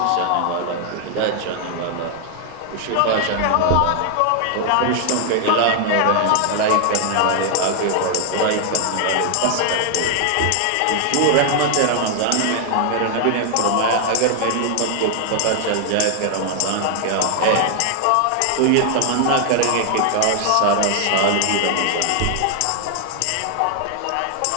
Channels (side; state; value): both; different; correlation 0.00